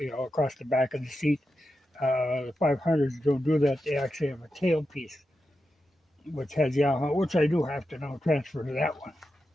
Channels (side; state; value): both; normal; correlation 0.89